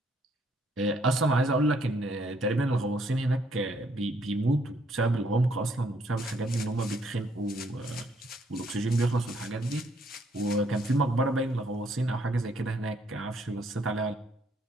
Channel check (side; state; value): both; normal; correlation 0.69